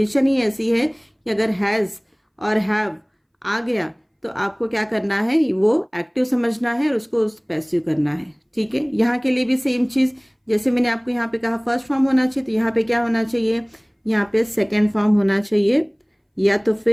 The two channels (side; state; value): both; identical; correlation 1.00